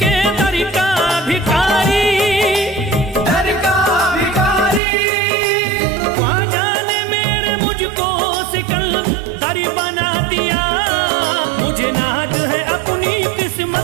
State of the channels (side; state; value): left; drops out; at 4.8 s